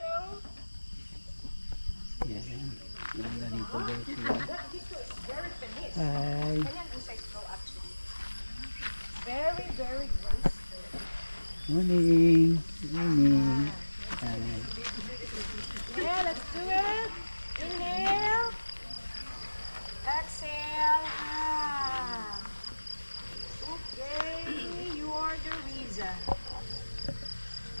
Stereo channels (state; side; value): inverted; both; correlation -1.00